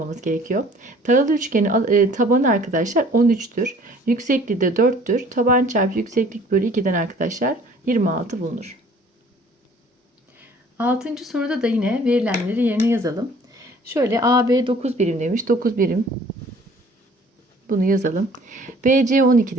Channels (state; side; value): normal; both; correlation 0.53